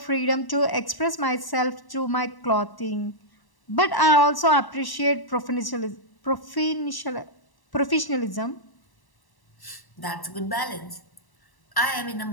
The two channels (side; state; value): right; late; 1.0 ms